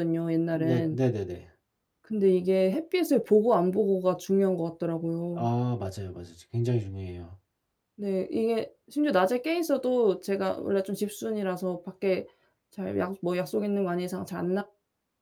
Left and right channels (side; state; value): both; identical; correlation 1.00